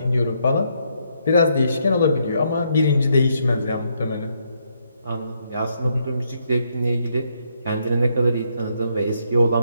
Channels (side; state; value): both; inverted; correlation -0.75